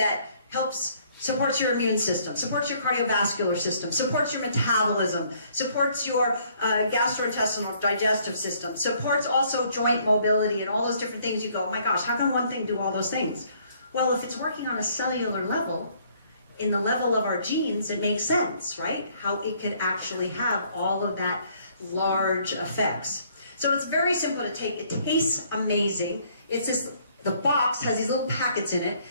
helps, supports your immune system, supports your cardiovascular system, supports your metabolism, supports your gastrointestinal digestive system, supports also joint mobility and all those different things, you go, oh my gosh, how can one thing do all those things? Well, if it's working on a cellular level, in the level of our genes, it makes sense, right? How it could actually have all of that large effects. So it's very simple to take. It tastes amazing. It's this, the box has these little packets in it.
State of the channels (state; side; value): inverted; both; correlation -0.64